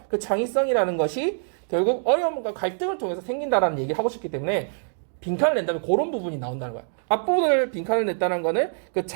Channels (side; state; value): left; silent; digital silence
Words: 그 창의성이라는 것이 결국 어려움과 갈등을 통해서 생긴다라는 얘기를 하고 싶기 때문에 빈칸을 낸다면 그런 부분이 나온다는 거야. 앞부분을 빈칸을 냈다는 거는 그